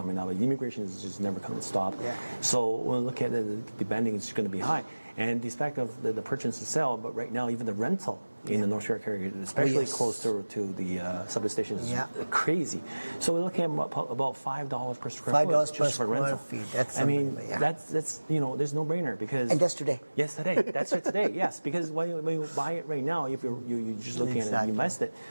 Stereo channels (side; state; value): both; inverted; correlation -1.00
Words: up. Immigration is just never going to stop. Yeah. So when we look at the bending, it's going to be high. And despite of the purchase and sell, but right now even the rental in the North York area, especially close to the subway station, is crazy. So we're looking at about $5 per square foot just for rental. That's there's no brainer because. And that's today. Yes, today. That's right today. Yes, because when you buy it right now, if you're just looking at it and you invest it,